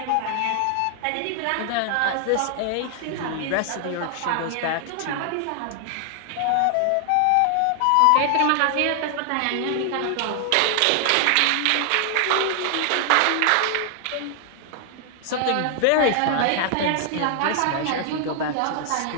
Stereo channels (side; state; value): both; different; correlation 0.00